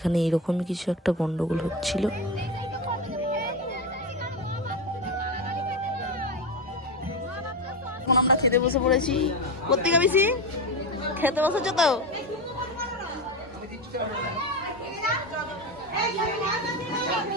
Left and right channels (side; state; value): both; normal; correlation 0.17